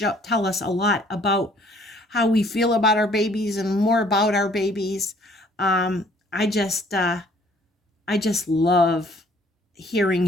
tell us a lot about how we feel about our babies and more about our babies. Um, I just I just love hearing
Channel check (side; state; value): both; normal; correlation 0.59